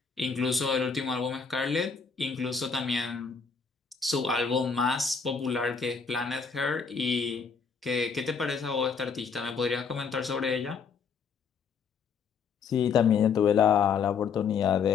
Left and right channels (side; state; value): right; quieter; 5.8 dB